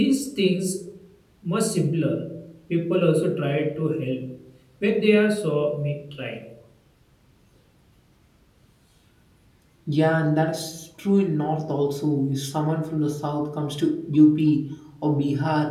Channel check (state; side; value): identical; both; correlation 1.00